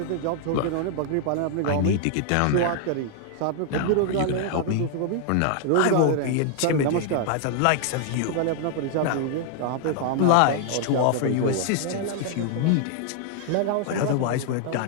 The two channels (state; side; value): different; both; correlation 0.00